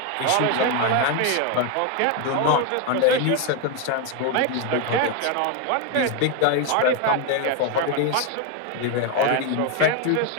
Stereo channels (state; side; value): different; both; correlation 0.01